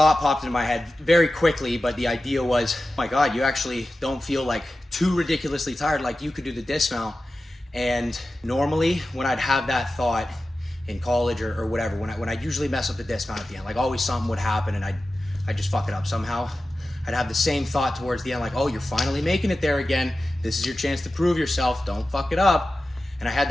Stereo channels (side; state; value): both; normal; correlation 0.94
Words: popped into my head very quickly, but the idea was, oh my God, you actually don't feel like too ridiculously tired, like you could do the dismount. And normally when I'd have that thought in college or whatever, when I usually mess up the dismount at the end, like always something would happen and I'd just fuck it up somehow. I'd have the same thought towards the end, like, oh, you're finally making it there again. This is your chance to prove yourself. Don't fuck it up. And I had